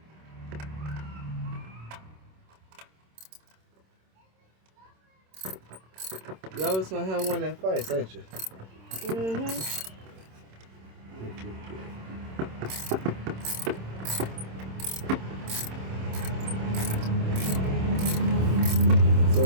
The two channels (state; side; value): late; left; 26 ms